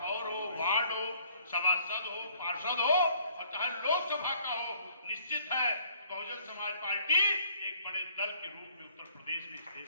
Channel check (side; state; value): both; inverted; correlation -0.60